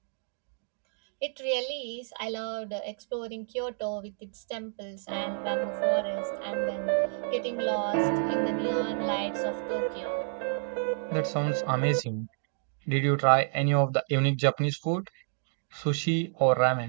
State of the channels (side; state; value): left; silent; digital silence